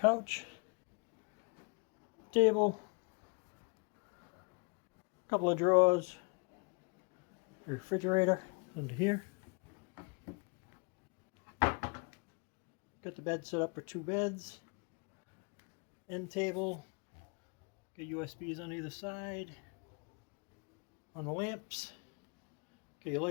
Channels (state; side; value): quieter; right; 34.5 dB